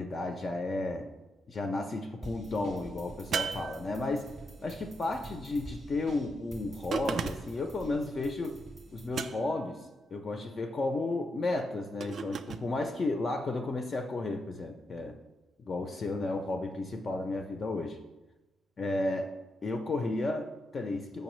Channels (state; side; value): normal; both; correlation 0.83